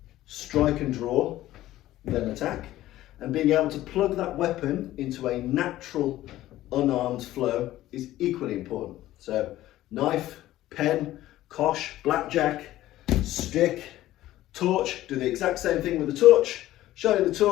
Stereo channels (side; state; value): right; quieter; 14.9 dB